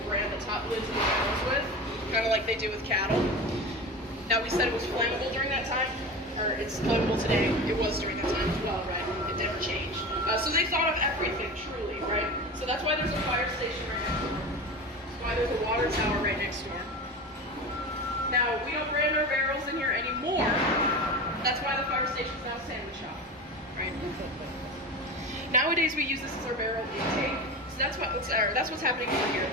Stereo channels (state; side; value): normal; both; correlation 0.28